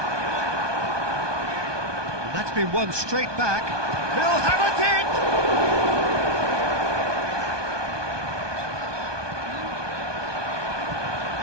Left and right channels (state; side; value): late; left; 1.2 ms